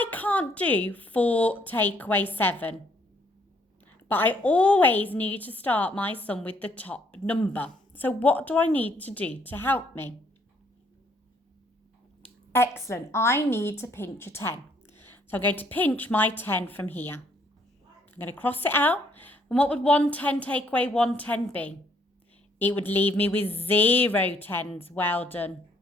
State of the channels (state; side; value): normal; both; correlation 0.66